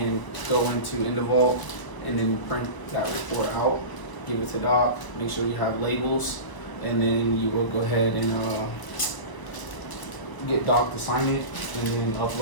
go into InDeVault and then print that report out, give it to Doc, make sure you have labels, and then you will go ahead and get Doc to sign it and then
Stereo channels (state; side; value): late; right; 1.0 ms